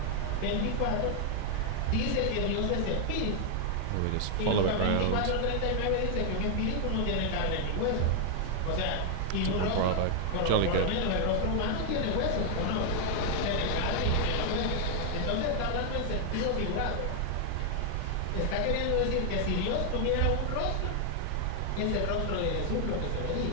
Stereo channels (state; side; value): different; both; correlation 0.00